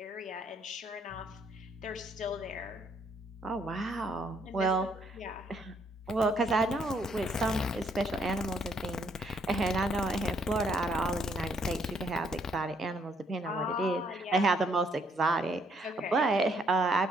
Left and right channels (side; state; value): both; normal; correlation 0.69